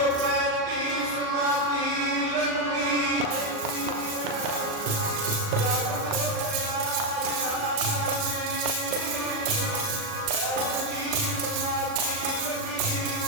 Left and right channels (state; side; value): late; left; 38 ms